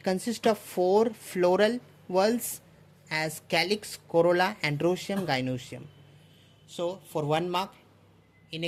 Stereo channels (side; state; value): both; identical; correlation 1.00